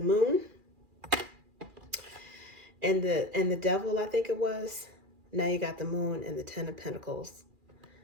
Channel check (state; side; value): late; left; 2.4 ms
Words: moon and the devil, I think it was. Now you got the moon and the 10 of Pentacles.